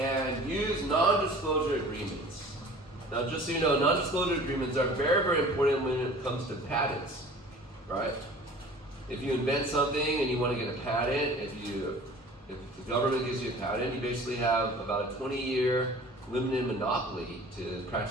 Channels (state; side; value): normal; both; correlation 0.45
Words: use non-disclosure agreements. Now, just so you know, non-disclosure agreements are very, very important when it comes to patents, right? If you invent something and you want to get a patent, if the government gives you a patent, you basically have about a 20-year limited monopoly to